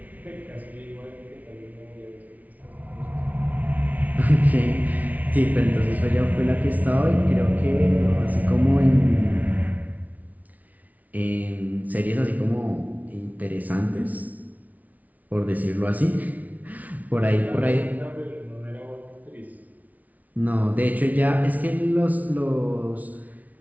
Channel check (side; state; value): left; late; 0.073 ms